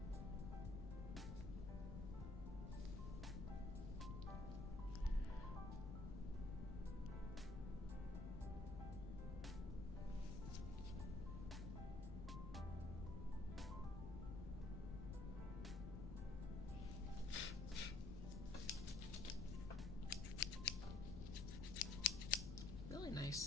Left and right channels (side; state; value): left; noise; rumble, 4 dB below the sound